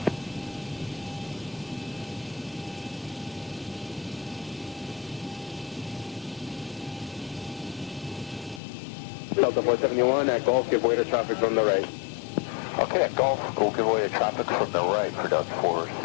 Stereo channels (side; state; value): right; drops out; at 8.6 s